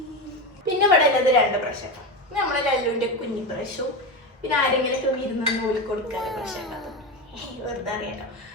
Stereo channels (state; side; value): normal; both; correlation 0.19